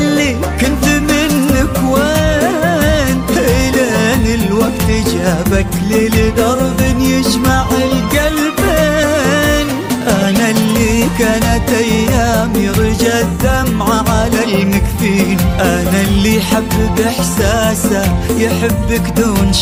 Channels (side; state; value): both; identical; correlation 1.00